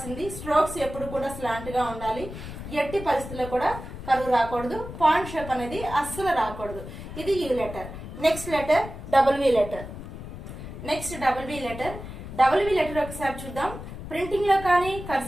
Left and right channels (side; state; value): left; noise; rumble, 11 dB below the sound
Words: స్ట్రోక్స్ ఎప్పుడు కూడా స్లాంట్ గా ఉండాలి. ఎట్టి పరిస్థితుల్లో కూడా కరువు రాకూడదు. పాయింట్ షేప్ అనేది అస్సలు రాకూడదు. ఇది you letter. Next letter double V letter. ఒకసారి చూద్దాం. ప్రింటింగ్ లో కానీ